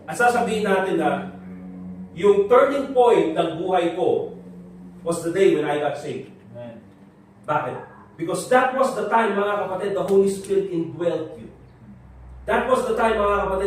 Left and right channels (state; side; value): identical; both; correlation 1.00